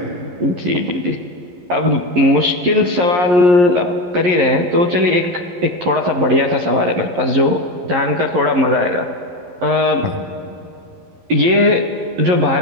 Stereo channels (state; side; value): late; left; 11 ms